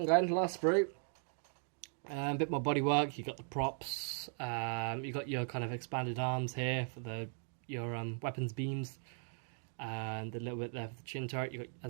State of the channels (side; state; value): left; silent; 52 dB below the other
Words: going. Last sprue. A bit more bodywork. You got the props. You got your kind of expanded arms here for your weapons beams, and a little bit there for the chin turret. You got,